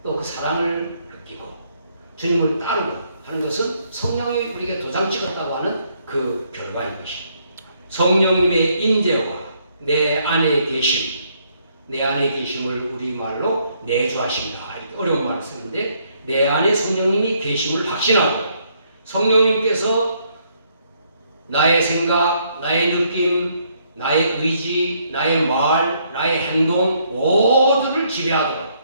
또 그 사랑을 느끼고 주님을 따르고 하는 것은 성령이 우리에게 도장 찍었다고 하는 그 결과인 것입니다. 성령님의 임재와 내 안에 계심을 우리말로 내주하십니다. 이렇게 어려운 말을 쓰는데, 내 안에 성령님이 계심을 확신하고 성령님께서 나의 생각, 나의 느낌, 나의 의지, 나의 말, 나의 행동 모두를 지배하도록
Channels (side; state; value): both; inverted; correlation -0.70